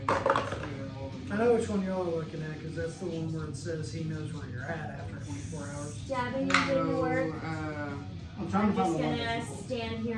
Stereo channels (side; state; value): both; identical; correlation 1.00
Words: I know which one y'all are looking at because that's the one where it says he knows where you're at after 24 hours. Stabbing didn't work. I'm trying I'm to find just the one gonna that's stand